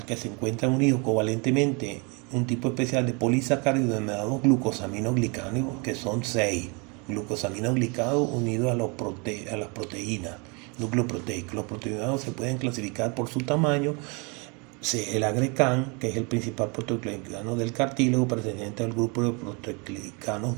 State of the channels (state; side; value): quieter; left; 31.5 dB